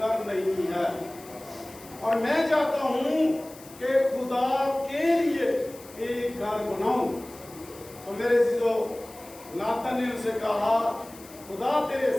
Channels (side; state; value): left; noise; hiss, 20 dB below the sound